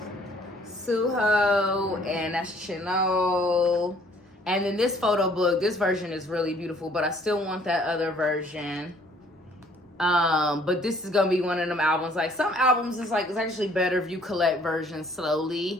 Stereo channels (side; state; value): both; normal; correlation 0.60